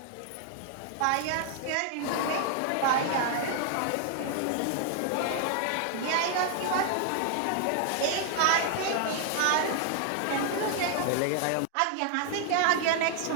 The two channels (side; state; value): both; different; correlation 0.00